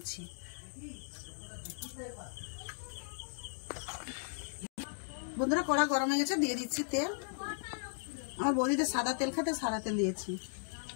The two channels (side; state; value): right; silent; digital silence